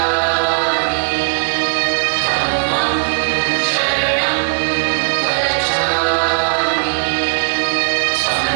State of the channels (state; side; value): silent; left; 68 dB below the other